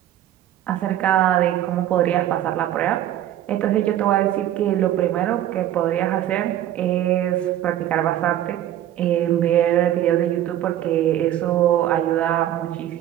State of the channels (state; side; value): quieter; left; 12.3 dB